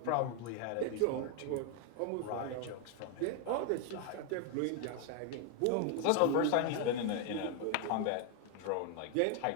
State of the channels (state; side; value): different; both; correlation 0.01